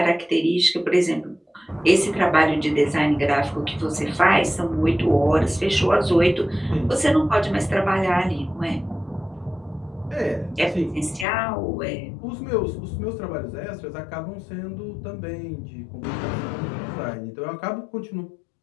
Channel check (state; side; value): drops out; right; at 11.2 s